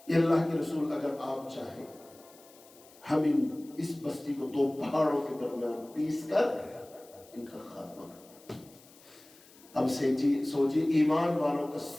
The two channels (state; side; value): noise; left; hiss, 25 dB below the sound